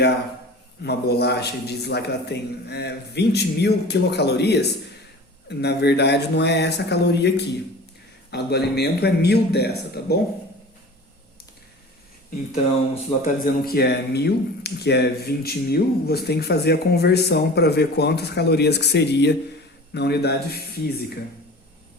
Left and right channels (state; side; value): normal; both; correlation 0.39